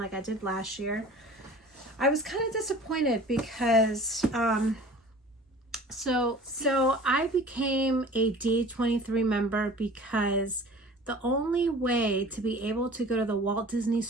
I did last year. I was kind of disappointed because so I became a D23 member because the only way to be able to go to the Walt Disney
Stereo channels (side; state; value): both; normal; correlation 0.44